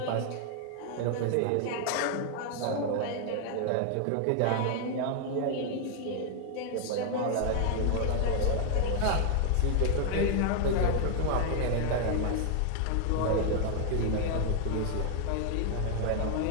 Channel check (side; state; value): both; different; correlation 0.00